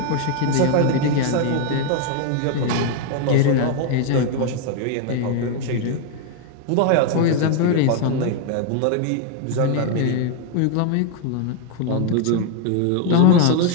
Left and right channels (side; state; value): both; different; correlation 0.00